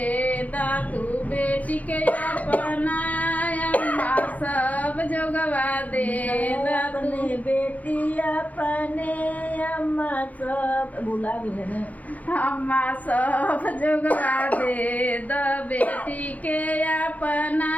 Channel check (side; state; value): right; late; 0.076 ms